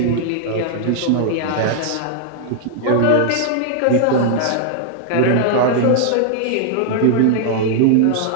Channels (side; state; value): both; different; correlation 0.00